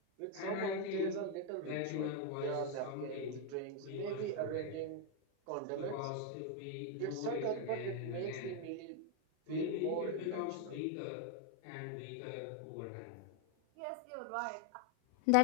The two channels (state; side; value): different; both; correlation 0.01